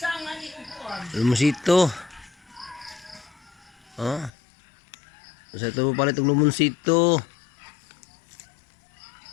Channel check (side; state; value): right; drops out; at 4.3 s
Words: ani upuan. Lumusito. Ha? Usat pa pala itong lumusito.